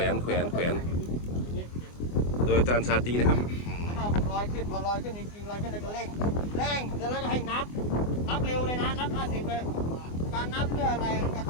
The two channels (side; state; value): right; late; 24 ms